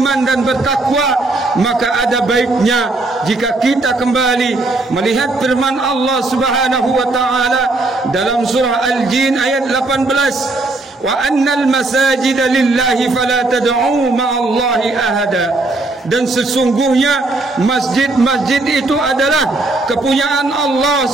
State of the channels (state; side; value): quieter; left; 3.1 dB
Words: dan bertakwa. Maka ada baiknya jika kita kembali melihat firman Allah Subhanahu wa taala dalam surah Al-Jin ayat 18, wa annal masajida lillahi fala tad'u ma'allahi ahada. Dan sesungguhnya masjid-masjid itu adalah kepunyaan Allah